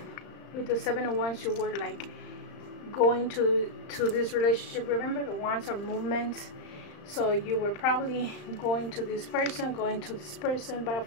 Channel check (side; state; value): right; late; 35 ms